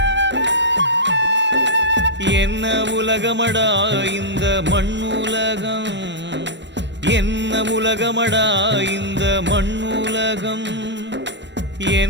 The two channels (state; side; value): late; left; 0.52 ms